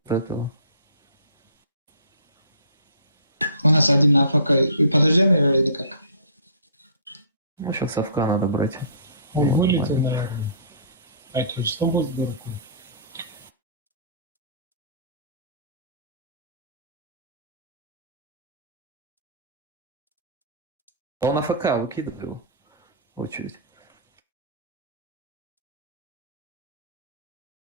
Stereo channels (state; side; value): inverted; both; correlation -0.48